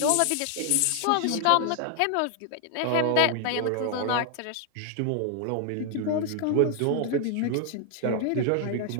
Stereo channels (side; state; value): both; different; correlation 0.00